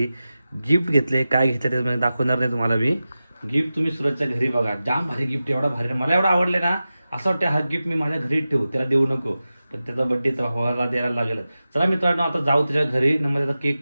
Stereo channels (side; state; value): both; inverted; correlation -0.94